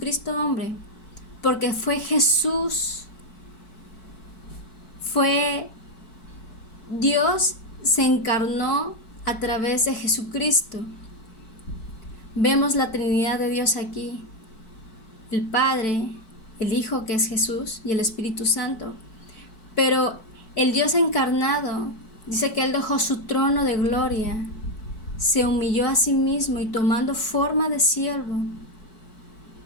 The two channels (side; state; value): right; late; 4.6 ms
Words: hombre? Porque fue Jesús. Dios se encarnó a través de Jesucristo. Vemos la Trinidad de Dios aquí. El Padre, el Hijo que es Jesús y el Espíritu Santo. Pero el Dios encarnado dice que Él dejó su trono de gloria, se humilló a sí mismo y tomando forma de siervo,